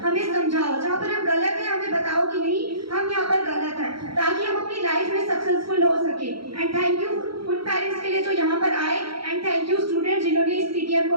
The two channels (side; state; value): left; late; 0.74 ms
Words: हमें समझाओ, जहाँ पर हम गलत हैं हमें बताओ कि नहीं हम यहाँ पर गलत हैं, ताकि हम अपनी लाइफ में सक्सेसफुल हो सके। एंड थैंक यू उन पेरेंट्स के लिए जो यहाँ पर आए, एंड थैंक यू स्टूडेंट्स जिन्होंने इस पीटीएम